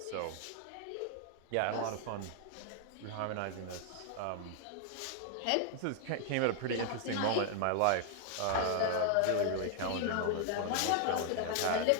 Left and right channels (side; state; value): both; different; correlation 0.00